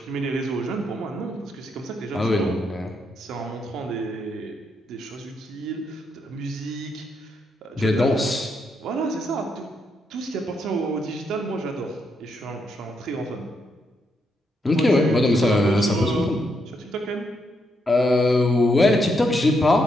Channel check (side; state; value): both; normal; correlation 0.79